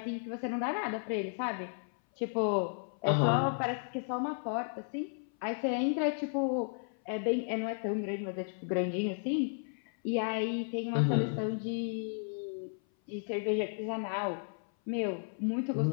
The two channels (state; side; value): silent; right; 55 dB below the other